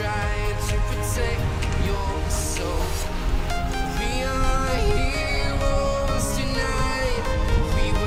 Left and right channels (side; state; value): both; identical; correlation 1.00